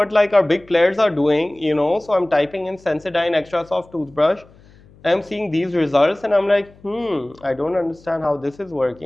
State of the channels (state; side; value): noise; left; hum, 26 dB below the sound